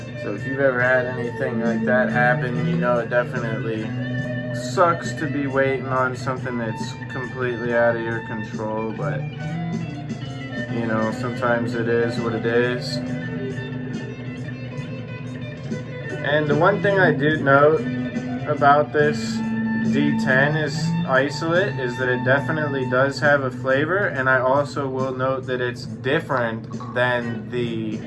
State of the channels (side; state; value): both; identical; correlation 1.00